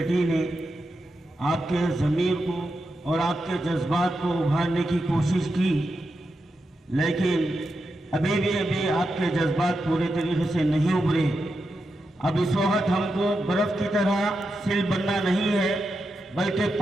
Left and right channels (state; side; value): normal; both; correlation 0.87